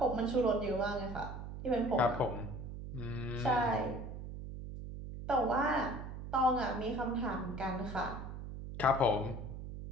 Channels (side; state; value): right; noise; hum, 8 dB below the sound